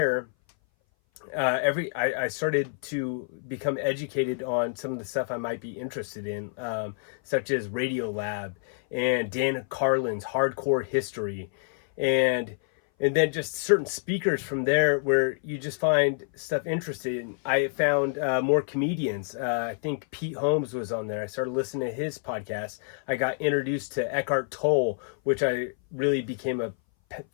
I started to become educated on some of the stuff I might be interested in, such as Radiolab and Dan Carlin's Hardcore History, and then just certain speakers from there where you just find stuff interesting. I found more comedians. I think Pete Holmes was on there. I started listening to his podcast. I got introduced to Eckhart Tolle, which I really became a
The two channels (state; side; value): silent; right; 58 dB below the other